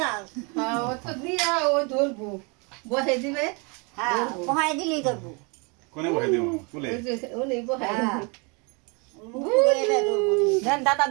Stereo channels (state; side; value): quieter; left; 31.9 dB